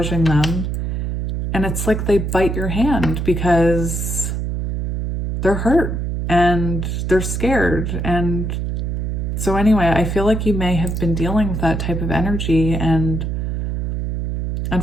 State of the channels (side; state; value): right; noise; hum, 2 dB below the sound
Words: them. And it's like they bite your hand because they're hurt and they're scared. And so anyway, I feel like you may have been dealing with that type of energy, and